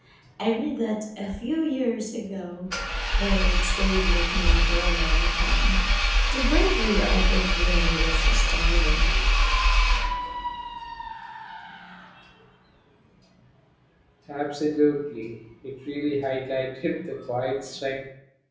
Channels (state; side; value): identical; both; correlation 1.00